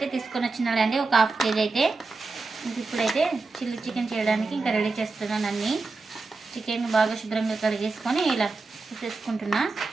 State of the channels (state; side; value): quieter; left; 3.9 dB